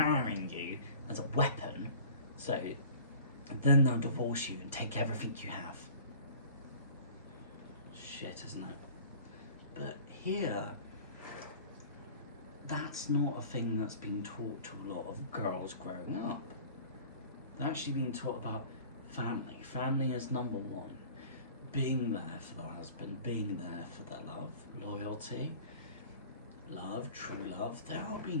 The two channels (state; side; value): inverted; both; correlation -0.44